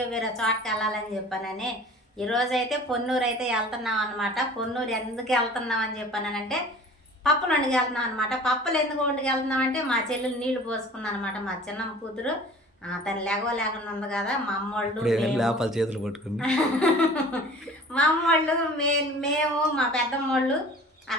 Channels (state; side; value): normal; both; correlation 0.44